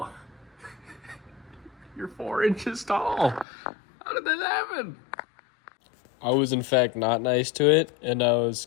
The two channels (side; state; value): right; drops out; at 3.5 s